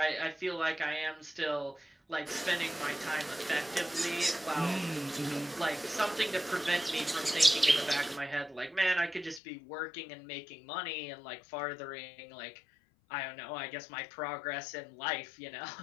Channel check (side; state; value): right; drops out; at 9.4 s